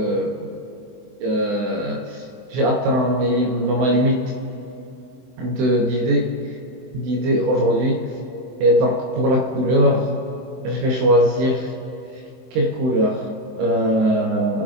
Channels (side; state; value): left; late; 23 ms